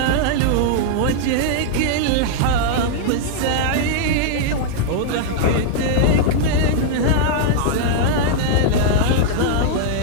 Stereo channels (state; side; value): different; both; correlation -0.01